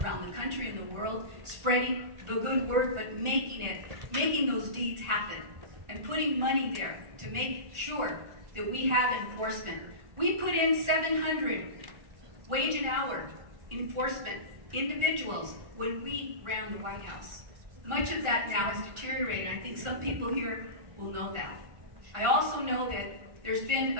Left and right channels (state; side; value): late; left; 1.4 ms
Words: around the country and the world, spreading the good word, but making those deeds happen, and putting money there to make sure that we have enforcement. We put in 700 wage and hour enforcement individuals when we ran the White House. Much of that now has deteriorated. I think some people here will know that. I also know that there's been